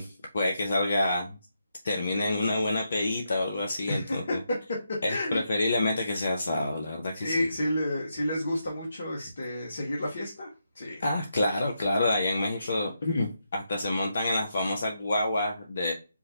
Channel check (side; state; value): both; inverted; correlation -0.82